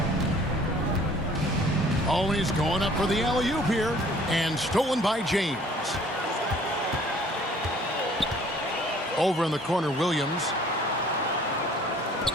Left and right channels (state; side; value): normal; both; correlation 0.55